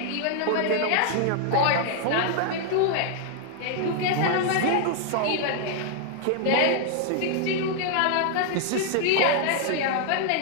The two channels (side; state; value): both; different; correlation 0.00